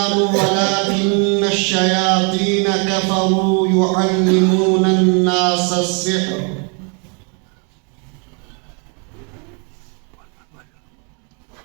ولكن الشياطين كفروا يعلمون الناس السحر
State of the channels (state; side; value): quieter; left; 36.7 dB